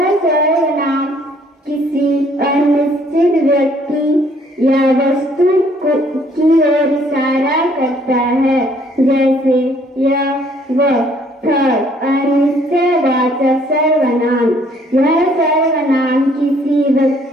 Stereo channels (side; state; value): both; normal; correlation 0.62